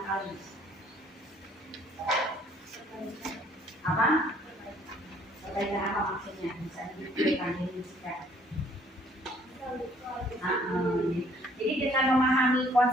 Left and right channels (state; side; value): normal; both; correlation 0.60